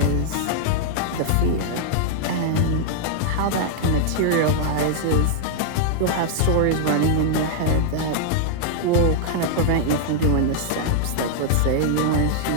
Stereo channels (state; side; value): different; both; correlation -0.01